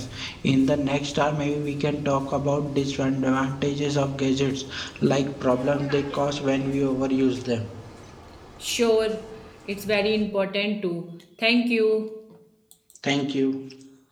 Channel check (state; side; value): identical; both; correlation 1.00